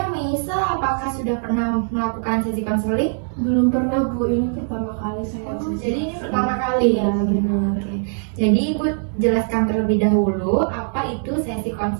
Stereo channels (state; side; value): silent; left; 65 dB below the other